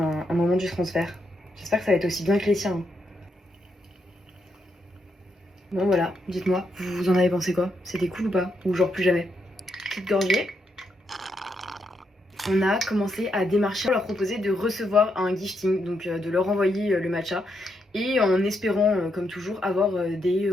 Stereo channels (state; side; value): normal; both; correlation 0.80